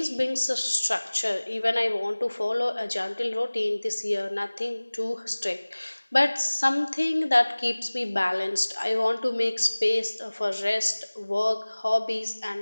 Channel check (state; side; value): inverted; both; correlation -1.00